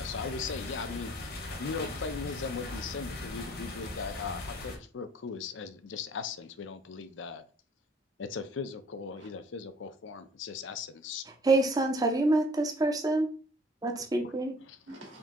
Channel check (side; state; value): both; normal; correlation 0.54